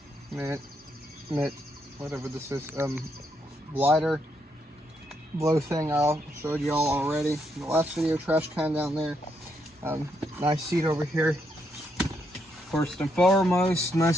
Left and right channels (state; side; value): normal; both; correlation 0.77